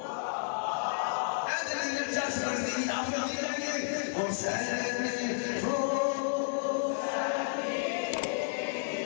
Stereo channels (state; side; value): silent; right; digital silence